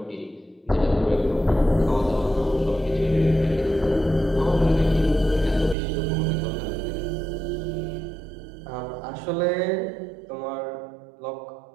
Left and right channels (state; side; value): drops out; left; at 5.8 s